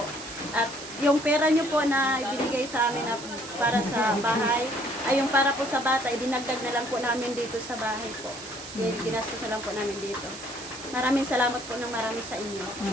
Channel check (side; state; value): right; noise; hiss, 13 dB below the sound